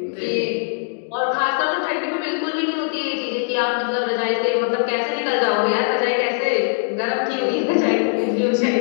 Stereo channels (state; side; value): silent; right; digital silence